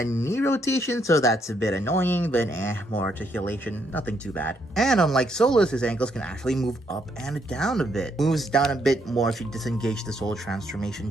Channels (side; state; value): both; normal; correlation 0.74